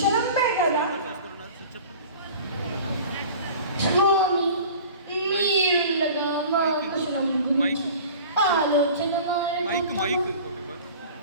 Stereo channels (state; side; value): inverted; both; correlation -0.41